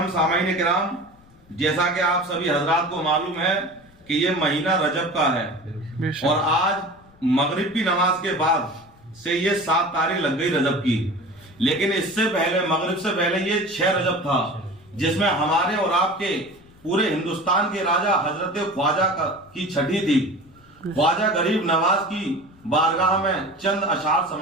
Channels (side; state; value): left; noise; rumble, 28 dB below the sound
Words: سامعین کرام، جیسا کہ آپ سبھی حضرات کو معلوم ہے کہ یہ مہینہ رجب کا ہے، اور آج مغرب کی نماز کے بعد سے یہ 7 تاریخ لگ گئی رجب کی، لیکن اس سے پہلے مغرب سے پہلے یہ 6 رجب تھا، جس میں ہمارے اور آپ کے پورے ہندوستان کے راجہ حضرت خواجہ کی چھٹی تھی۔ خواجہ غریب نواز کی بارگاہ میں چند اشعار